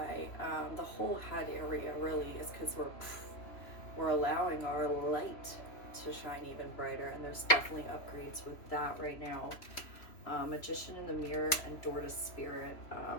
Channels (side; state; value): right; late; 3.0 ms